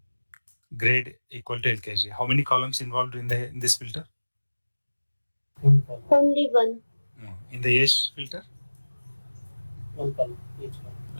grade equal to LKG. How many columns involved in this filter? One column. Only one. In the age filter, One column, each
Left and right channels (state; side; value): inverted; both; correlation -1.00